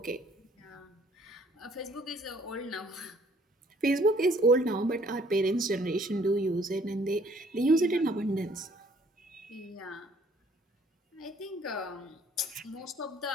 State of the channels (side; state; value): both; normal; correlation 0.60